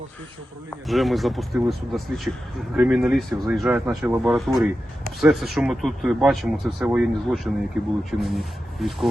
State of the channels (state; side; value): normal; both; correlation 0.92